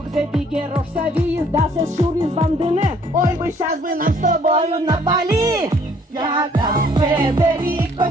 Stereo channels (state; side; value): normal; both; correlation 0.61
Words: Бигерош Савиис, Дасес Шурис Вандене. Ой, бы сейчас бы нам с тобою на Бали. Яков